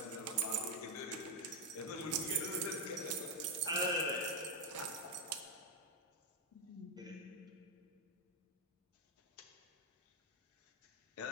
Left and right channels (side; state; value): both; normal; correlation 0.03